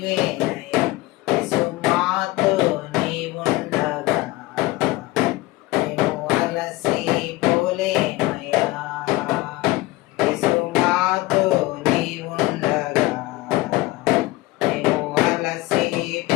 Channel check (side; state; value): right; quieter; 19.5 dB